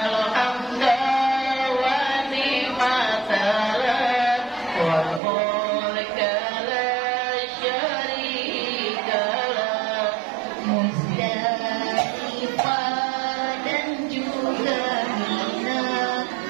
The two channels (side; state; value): left; drops out; at 5.2 s